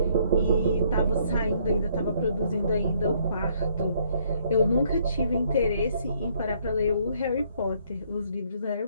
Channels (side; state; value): both; inverted; correlation -0.66